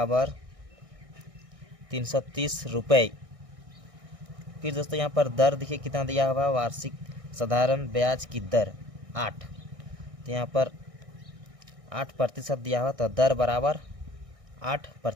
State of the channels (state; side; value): late; left; 1.6 ms